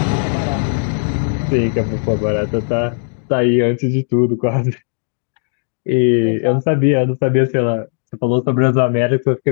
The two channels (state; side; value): silent; right; 68 dB below the other